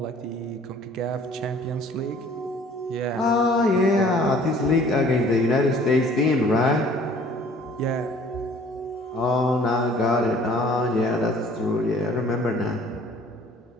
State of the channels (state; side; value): normal; both; correlation 0.53